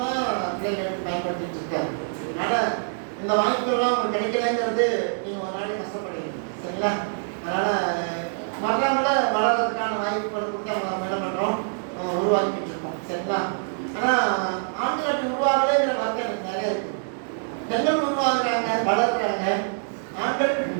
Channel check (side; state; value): left; silent; 62 dB below the other